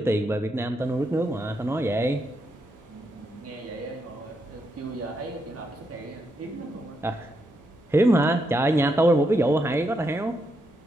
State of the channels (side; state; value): both; normal; correlation 0.81